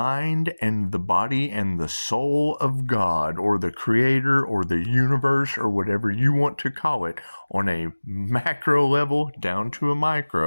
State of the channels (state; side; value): inverted; both; correlation -1.00